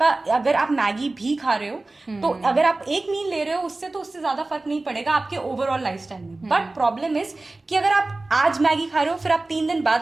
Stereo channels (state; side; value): quieter; left; 3.1 dB